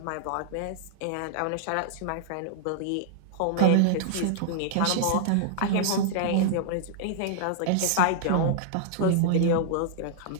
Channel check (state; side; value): different; both; correlation -0.01